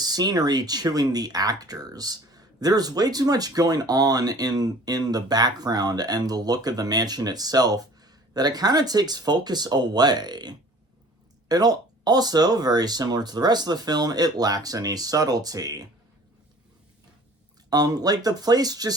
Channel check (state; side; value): normal; both; correlation 0.48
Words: chewing the actors. There's way too much going on in the background and the look of the mansion itself that it kind of takes focus away. It also, very similar to the rest of the film, it lacks any subtlety. Like, the place